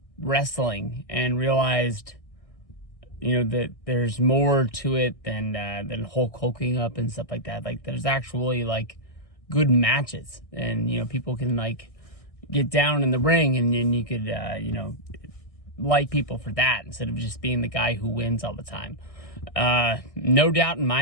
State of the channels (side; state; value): right; late; 1.6 ms